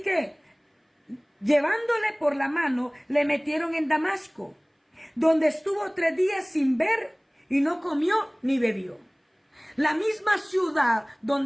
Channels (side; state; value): both; identical; correlation 1.00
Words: llevándole por la mano, le metieron en Damasco, donde estuvo 3 días sin ver y no comió ni bebió. La misma ciudad